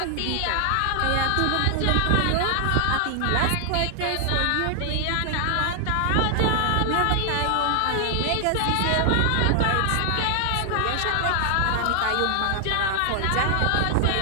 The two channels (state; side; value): different; both; correlation 0.00